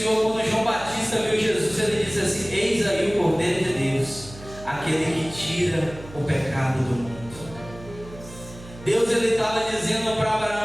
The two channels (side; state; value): right; noise; hum, 17 dB below the sound